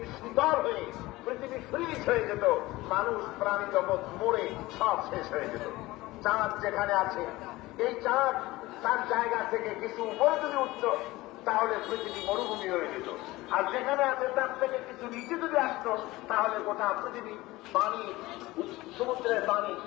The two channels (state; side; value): quieter; right; 19.3 dB